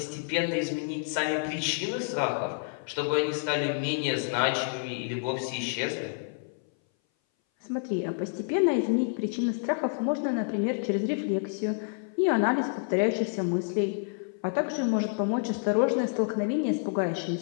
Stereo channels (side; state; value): right; silent; 58 dB below the other